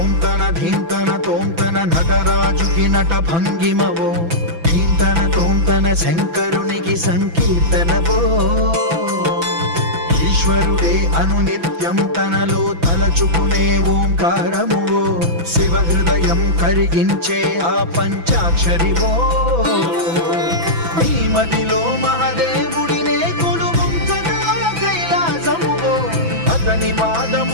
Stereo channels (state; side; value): late; left; 6.0 ms